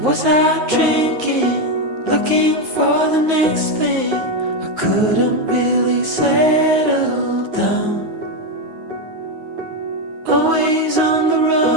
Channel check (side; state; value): left; late; 9.4 ms